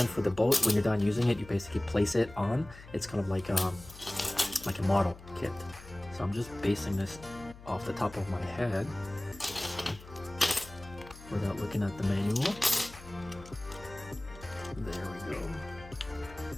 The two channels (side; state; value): left; noise; hum, 18 dB below the sound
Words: for the boat. When you're done using it, you basically place it on. It's kind of like a model kit. So I'm just basing this off the top of my head without looking at the manual. There we go.